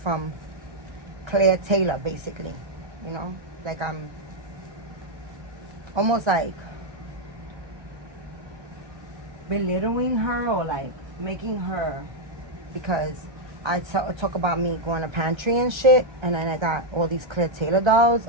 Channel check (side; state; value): left; late; 1.3 ms